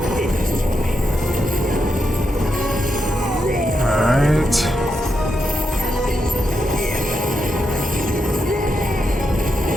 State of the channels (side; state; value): both; normal; correlation 0.85